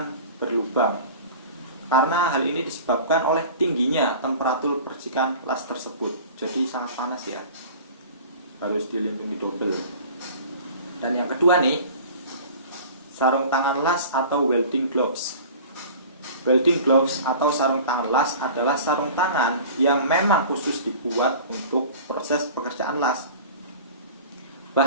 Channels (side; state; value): both; inverted; correlation -0.41